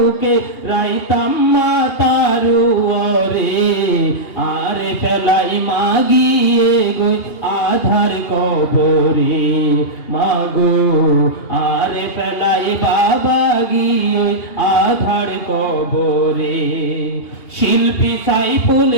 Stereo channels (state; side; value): late; right; 2.8 ms